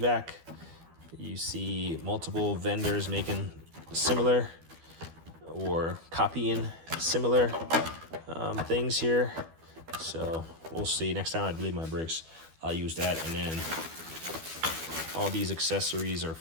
You see multiple vendors making similar or copying similar things here. So we'll see. Next time I bleed my brakes, I'll use that. And then all these accessories are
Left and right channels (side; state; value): left; late; 12 ms